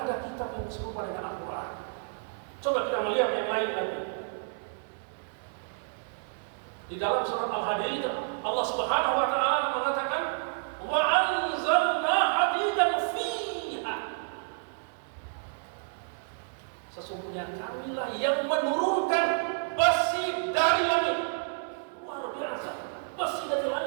kitab yang serupa dengan Al-Quran. Coba kita melihat yang lain lagi. Di dalam surat Al-Hadid Allah Subhanahu wa taala mengatakan wa anzalna hadidan fiha. Sesungguhnya kamilah yang menurunkan besi dari langit. Luar biasa. Besi dari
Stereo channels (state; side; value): silent; left; 58 dB below the other